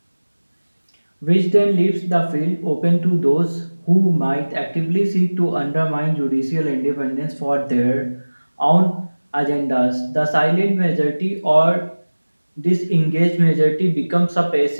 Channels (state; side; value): inverted; both; correlation -1.00